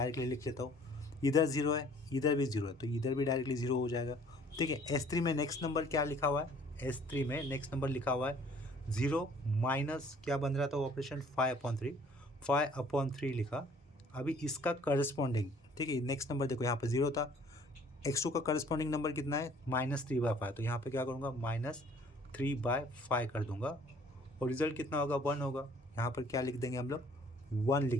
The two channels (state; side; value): normal; both; correlation 0.56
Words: लिख लेता हूँ। इधर जीरो है, इधर भी जीरो है, तो इधर भी डायरेक्टली जीरो हो जाएगा, ठीक है। S3 में नेक्स्ट नंबर क्या लिखा हुआ है, S3 में नेक्स्ट नंबर लिखा हुआ है जीरो माइनस क्या बन रहा था ऑपरेशन 5/3 लिखा। अभी इसका करस्पॉन्डिंग, ठीक है, नेक्स्ट नंबर देखो यहाँ पर जीरो था, x2 का करस्पॉन्डिंग नंबर कितना है -3/5। तो यहाँ पे क्या करूँगा -3/5 कर दूंगा, और रिजल्ट कितना होगा 1 होगा। यहाँ पर क्या लिख देंगे हम लोग 1